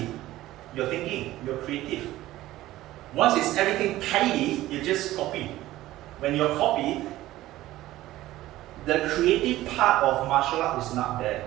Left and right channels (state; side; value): quieter; left; 15.8 dB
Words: you're thinking, you're creative. Once it's everything tidy, you just copy. When you copy, the creative part of martial art is not there.